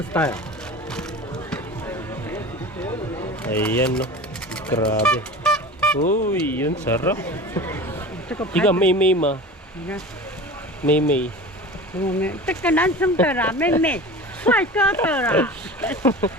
style. Ayan, no. Grabe. Uy, yun sarap. Iga may ma. May. 这个男生的啦，妹妹，帅哥的啦，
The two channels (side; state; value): both; normal; correlation 0.34